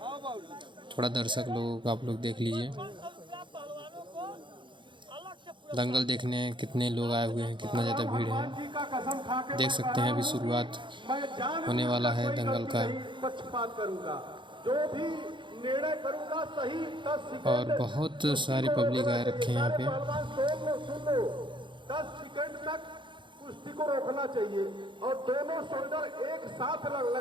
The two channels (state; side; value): late; left; 0.23 ms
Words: थोड़ा दर्शक लोग आप लोग देख लीजिए, दंगल देखने कितने लोग आए हुए हैं, कितना ज़्यादा भीड़ है। देख सकते हैं अभी शुरुआत होने वाला है दंगल का, जो भी निर्णय करूंगा सही 10 और बहुत सारी पब्लिक आए रखे हैं यहाँ पे। 10 सेकंड तक कुश्ती को रोकना चाहिए और दोनों शोल्डर एक साथ